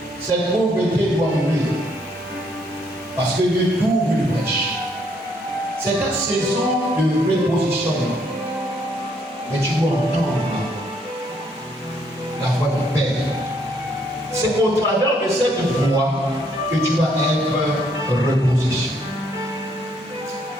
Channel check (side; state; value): both; normal; correlation 0.70